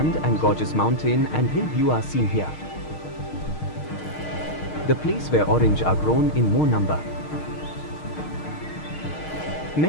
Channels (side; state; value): right; late; 6.5 ms